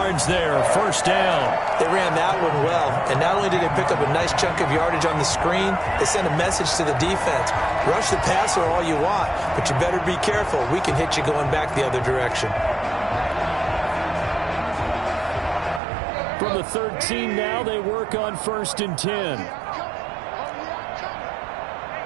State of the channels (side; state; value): left; drops out; at 15.8 s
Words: there, first down. They ran that one well, and not only did they pick up a nice chunk of yardage on the screen, they sent a message to the defense. Rush the passer all you want, but you better be careful. We can hit you going back the other direction. From the 13 now, they work on first and 10.